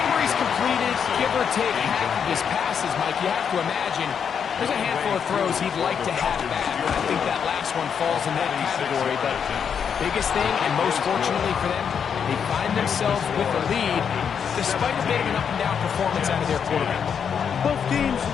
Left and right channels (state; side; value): quieter; right; 7.3 dB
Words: where he's completed, give or take half of his passes, Mike, you have to imagine there's a handful of throws he'd like to have back. I think that last one falls in that category, but biggest thing, and most fortunately for them, they find themselves with a lead despite a bit of an up-and-down performance out of their quarterback. Both teams